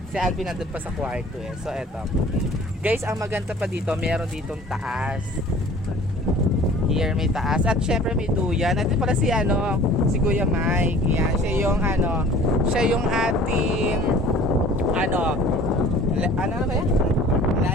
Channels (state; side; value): normal; both; correlation 0.48